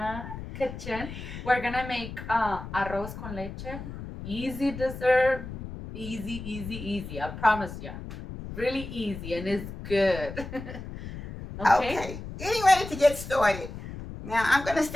kitchen. We're gonna make arroz con leche. Easy dessert, easy. I promise you, really easy and it's good. Okay, getting ready to get started. Now I'm gonna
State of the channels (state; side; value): noise; left; rumble, 10 dB below the sound